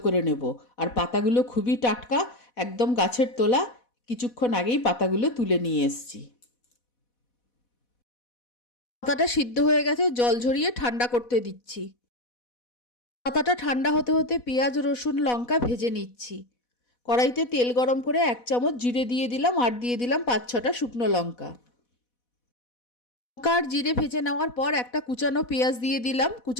করে নেব। আর পাতাগুলো খুবই টাটকা, একদম গাছের তোলা। কিছুক্ষণ আগেই পাতাগুলো তুলে নিয়ে এসেছি। পাতাটা সিদ্ধ হয়ে গেছে, জল ঝরিয়ে ঠান্ডা করতে দিচ্ছি। পাতাটা ঠান্ডা হতে হতে পেঁয়াজ, রসুন, লঙ্কা ভেজে নিচ্ছি। কড়াইতে তেল গরম করে 1 চামচ জিরে দিয়ে দিলাম আর দিয়ে দিলাম 5-6টা শুকনো লঙ্কা। লঙ্কা আর জিরে ভেজে নেওয়ার পর একটা কুচানো পেঁয়াজ দিয়ে দিলাম।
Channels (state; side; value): late; right; 4.1 ms